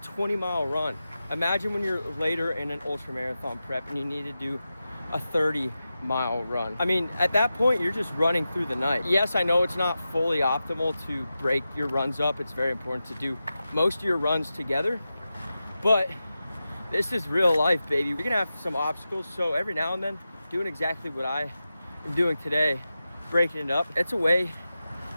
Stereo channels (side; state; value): both; inverted; correlation -0.92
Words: run. Imagine when you're later in an ultra marathon prep and you need to do a 30-mile run. I mean, at that point, you're just running through the night. Yes, I know it's not fully optimal to break your runs up. It's very important to do most of your runs together, but this is real life, baby. You're gonna have some obstacles, so every now and then, doing exactly what I am doing today, breaking it up, it's a way